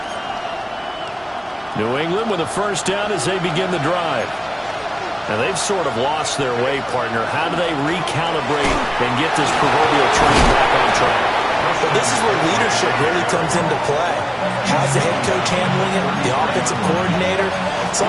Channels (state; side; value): identical; both; correlation 1.00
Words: New England with a 1st down as they begin the drive. Now they've sort of lost their way, partner. How do they recalibrate and get this proverbial train back on track? But this is where leadership really comes into play. How's the head coach handling it? The offensive coordinator?